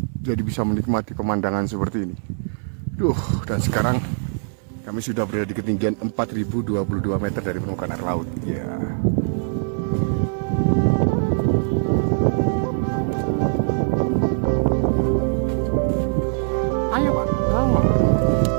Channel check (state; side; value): silent; left; 60 dB below the other